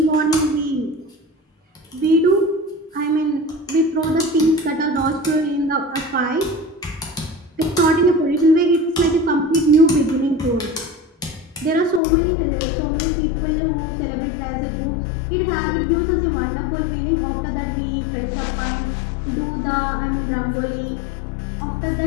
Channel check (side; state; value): right; drops out; at 12.0 s